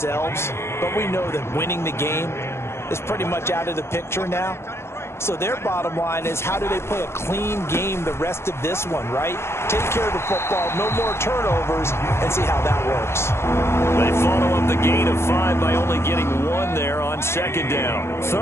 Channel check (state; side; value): late; right; 0.12 ms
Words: but we know that winning the game is pretty much out of the picture now. So their bottom line is, how do they play a clean game the rest of this one, right? Take care of the football, no more turnovers, and see how that works. They follow up the gain of 5 by only getting 1 there on 2nd down.